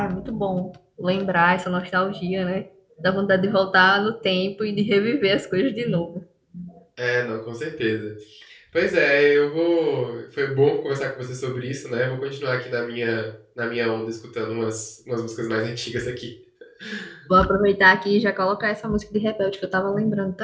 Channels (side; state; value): both; identical; correlation 1.00